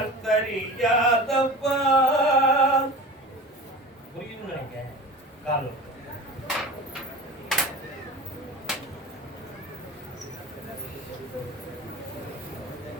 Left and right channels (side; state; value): both; normal; correlation 0.34